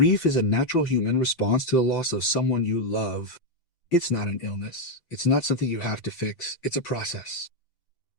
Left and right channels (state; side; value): late; right; 5.9 ms